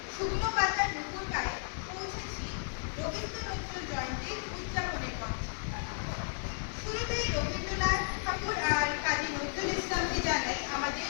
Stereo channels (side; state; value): right; silent; digital silence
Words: শুকনো পাতার দুপুর গায়ে পৌঁছেছি রবীন্দ্রনাথ জয়ন্তীর উদযাপনের পথে। শুরুতেই রবীন্দ্রনাথ ঠাকুর আর কাজী নজরুল ইসলামকে জানাই আমাদের